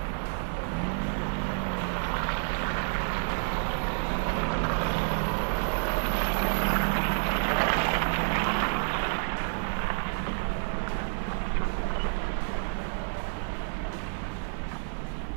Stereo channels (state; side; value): silent; left; digital silence